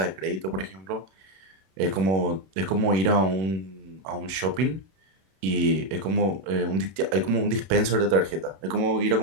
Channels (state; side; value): late; left; 31 ms